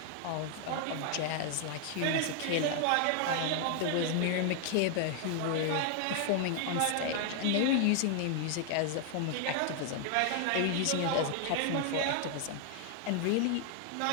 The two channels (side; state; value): both; different; correlation 0.00